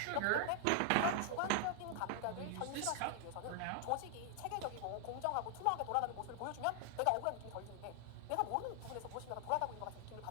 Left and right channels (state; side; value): different; both; correlation 0.00